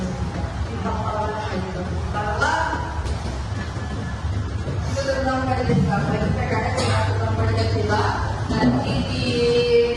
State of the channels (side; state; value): both; identical; correlation 1.00